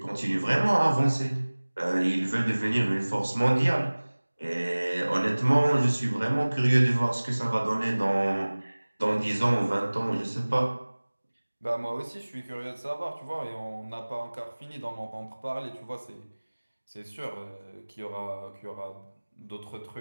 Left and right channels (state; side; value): inverted; both; correlation -1.00